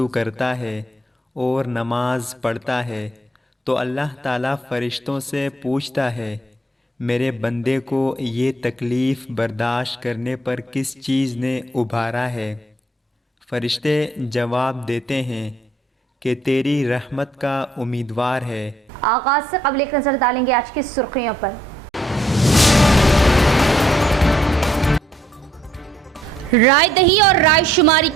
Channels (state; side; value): normal; both; correlation 0.67